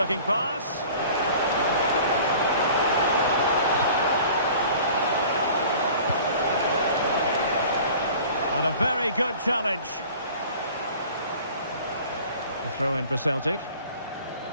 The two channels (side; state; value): both; inverted; correlation -0.46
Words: pass. And a very good challenge. A throw in for Celtic.